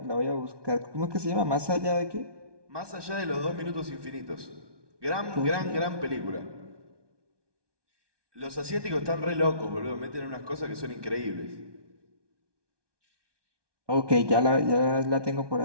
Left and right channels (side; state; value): left; late; 1.2 ms